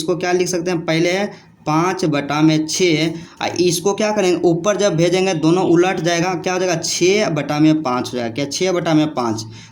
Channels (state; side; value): identical; both; correlation 1.00